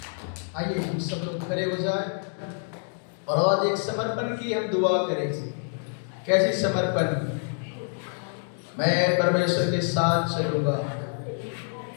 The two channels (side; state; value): right; silent; 60 dB below the other